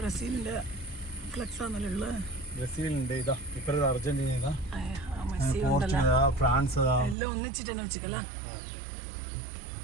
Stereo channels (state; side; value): drops out; left; at 7.2 s